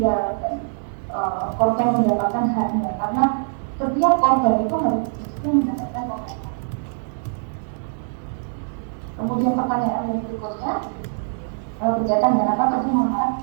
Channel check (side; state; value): left; silent; 62 dB below the other